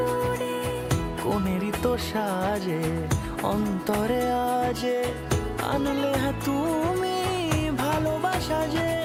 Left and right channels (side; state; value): both; identical; correlation 1.00